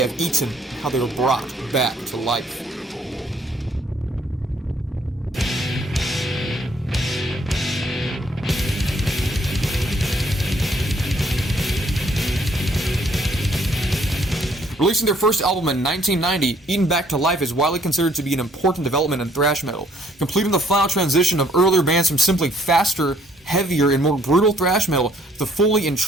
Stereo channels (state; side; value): normal; both; correlation 0.64